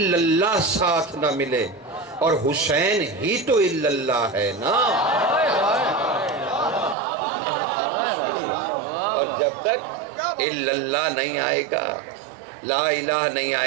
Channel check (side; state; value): left; drops out; at 7.0 s